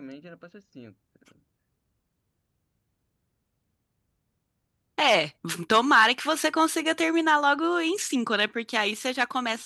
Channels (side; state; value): both; identical; correlation 1.00